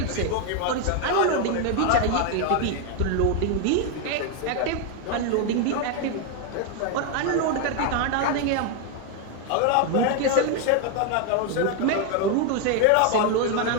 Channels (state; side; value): different; both; correlation 0.01